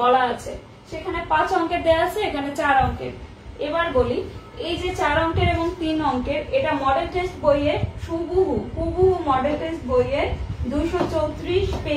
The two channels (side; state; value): both; identical; correlation 1.00